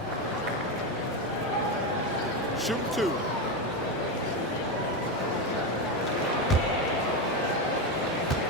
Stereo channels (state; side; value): normal; both; correlation 0.13